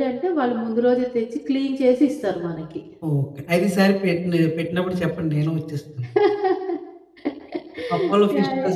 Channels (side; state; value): both; identical; correlation 1.00